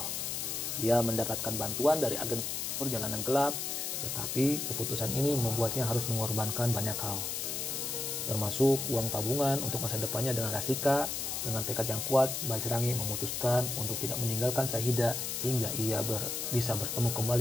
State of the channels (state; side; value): noise; left; hiss, 2 dB below the sound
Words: Dia mendapatkan bantuan dari agen perjalanan gelap, tetapi keputusan ini membuatnya harus mengorbankan banyak hal, termasuk uang tabungan untuk masa depannya dengan Rashika. Dengan tekad yang kuat, Bajrangi memutuskan untuk tidak meninggalkan Syahidah hingga ia bisa bertemu